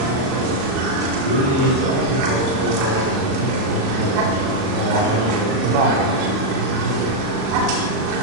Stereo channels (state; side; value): late; left; 37 ms